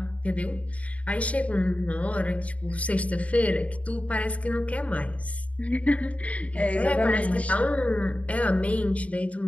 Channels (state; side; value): late; right; 0.066 ms